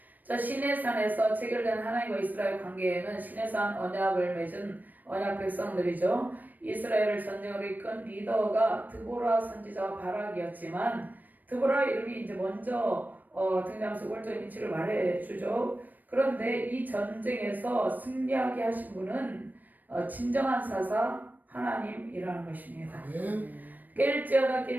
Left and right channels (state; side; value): late; left; 0.086 ms